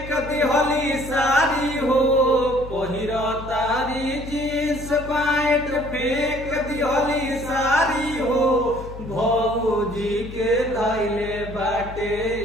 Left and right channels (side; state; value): left; noise; hum, 12 dB below the sound